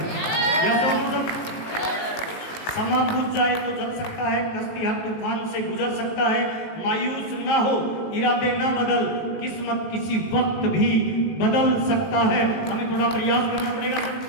समा बुझ जाए तो जल सकता है, कश्ती हर तूफान से गुजर सकता है। मायूस ना हो, इरादे ना बदल, किस्मत किसी वक्त भी बदल सकता है। हमें थोड़ा प्रयास करना पड़ेगा सर,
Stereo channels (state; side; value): late; right; 19 ms